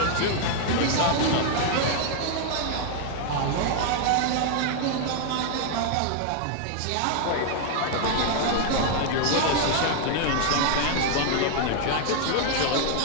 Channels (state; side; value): different; both; correlation 0.00